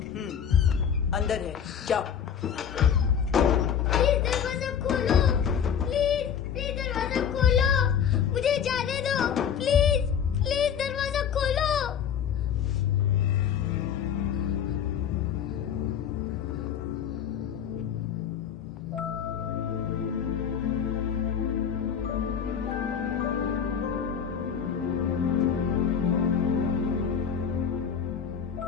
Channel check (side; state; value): right; quieter; 8.0 dB